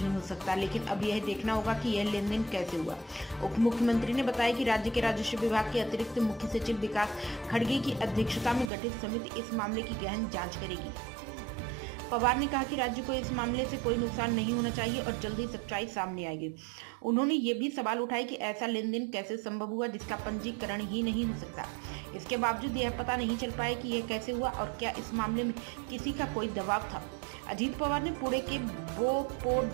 हो सकता, लेकिन अब यह देखना होगा कि यह लेन देन कैसे हुआ। उप मुख्यमंत्री ने बताया कि राज्य के राजस्व विभाग के अतिरिक्त मुख्य सचिव विकास खड़गे की अध्यक्षता में गठित समिति इस मामले की गहन जांच करेगी। पवार ने कहा कि राज्य को इस मामले से कोई नुकसान नहीं होना चाहिए और जल्द ही सच्चाई सामने आएगी। उन्होंने ये भी सवाल उठाए कि ऐसा लेन देन कैसे संभव हुआ जिसका पंजीकरण ही नहीं हो सकता। इसके बावजूद यह पता नहीं चल पाया कि यह कैसे हुआ और क्या इस मामले में किसी का कोई दबाव था। अजीत पवार ने पुणे के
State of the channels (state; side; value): drops out; left; at 8.7 s